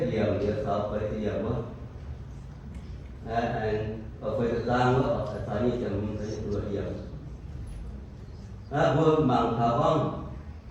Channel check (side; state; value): both; identical; correlation 1.00